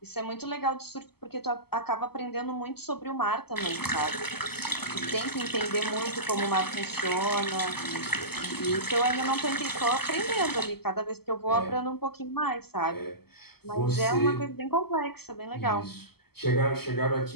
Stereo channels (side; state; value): right; late; 0.96 ms